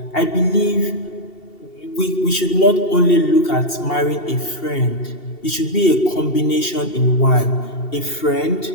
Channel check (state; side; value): late; right; 2.7 ms